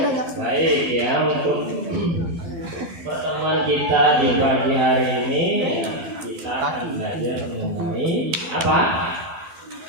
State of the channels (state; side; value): late; left; 12 ms